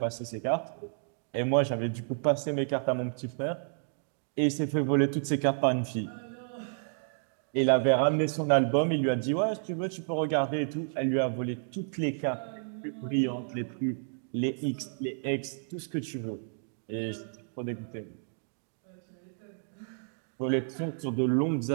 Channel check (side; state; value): left; silent; digital silence